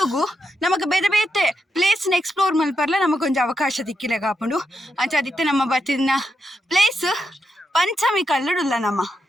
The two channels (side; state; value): both; normal; correlation 0.84